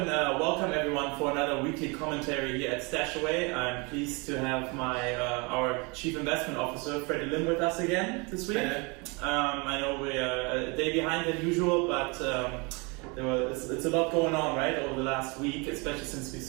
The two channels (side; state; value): left; quieter; 29.6 dB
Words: welcome everyone for another weekly commentary here at StashAway. I'm pleased to have our Chief Investment Officer, Freddy Lim, with us again this week. I know we are a day behind than usual, but it's a lot going on, right, over the last week, especially since we